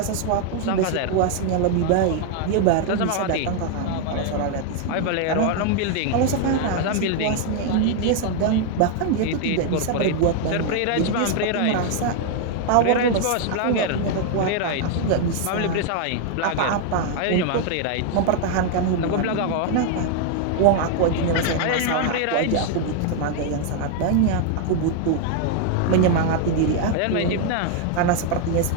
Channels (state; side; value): different; both; correlation 0.00